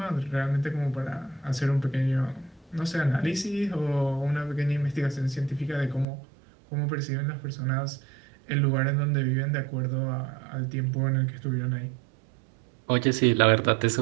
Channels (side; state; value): left; drops out; at 6.1 s